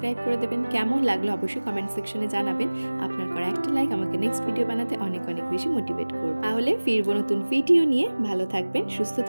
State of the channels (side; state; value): both; inverted; correlation -1.00